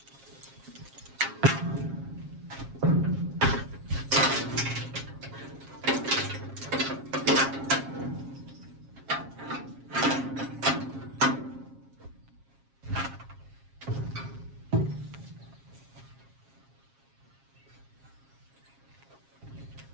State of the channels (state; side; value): late; left; 7.4 ms